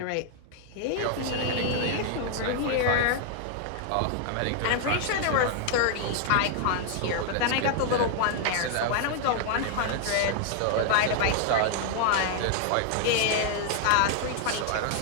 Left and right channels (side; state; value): both; different; correlation 0.00